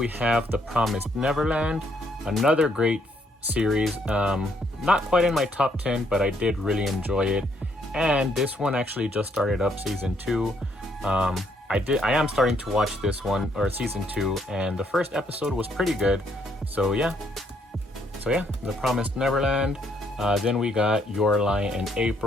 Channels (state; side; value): normal; both; correlation 0.71